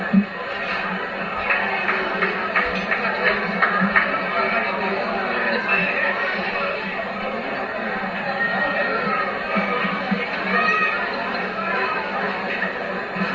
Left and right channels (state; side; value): identical; both; correlation 1.00